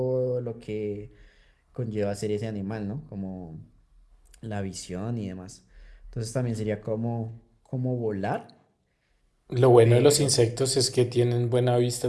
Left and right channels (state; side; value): identical; both; correlation 1.00